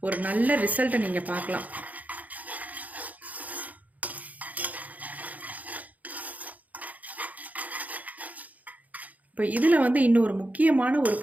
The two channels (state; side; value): late; left; 0.076 ms